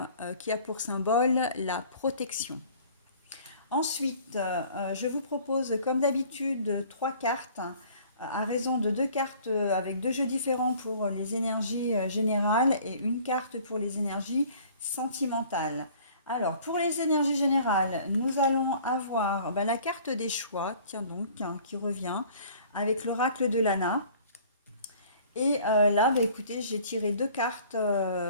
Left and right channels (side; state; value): both; inverted; correlation -0.52